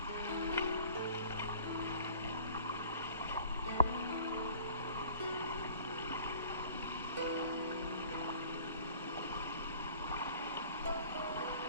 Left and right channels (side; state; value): both; inverted; correlation -0.48